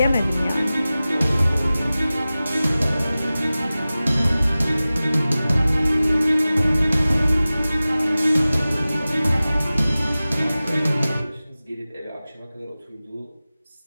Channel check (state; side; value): inverted; both; correlation -0.97